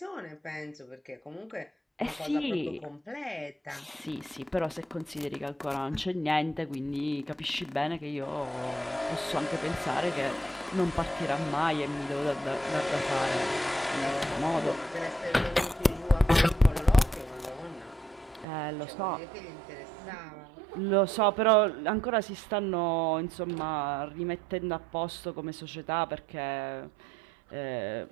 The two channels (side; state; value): left; drops out; at 18.4 s